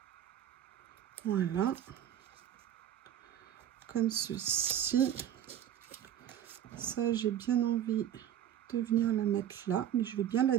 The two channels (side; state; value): left; quieter; 10.5 dB